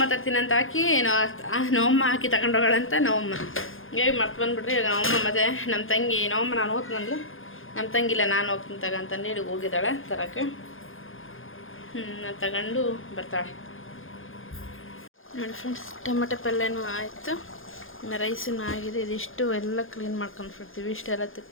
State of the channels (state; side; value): late; right; 0.59 ms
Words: ತರ್ತೀನಿ ಅಂತ ಹಾಕಿ ನವಮ್ಮ ಹಾಕಿ ತಗೊಂಡೋಗಳಂತ ನವಮ್ಮ ಹೇಗೆ ಮರ್ತು ಬಂದುಬಿಟ್ರಿ. ಇವಾಗ ನವಮ್ಮ ಮತ್ತು ನಮ್ಮ ತಂಗಿ ನವಮ್ಮ ನಾನು ಹೋಗ್ತಂದ್ಲು. ನಮ್ಮ ತಂಗಿಲ್ಲ ನಾನು ಹೋಗ್ತೀನಿ ತಗಂತಂದು ಹೇಳಿ ಹೋಗಿದ್ದಾಳೆ ತರಕ್ಕೆ. ನಾನು ತಗೊಂಡು ಬರ್ತಾಳೆ ನೋಡಿ ಫ್ರೆಂಡ್ಸ್. ಟೊಮೆಟೊ ಪಲ್ಯನೂ ಆಯಿತು, ಇನ್ನು ರೈಸೂ ಆಗಿದೆ. ಇದಿಷ್ಟು ಎಲ್ಲ ಕ್ಲೀನ್ ಮಾಡ್ಕೊಂಡ್ಬಿಡ್ತೀವಿ. ಇಷ್ಟೆಲ್ಲ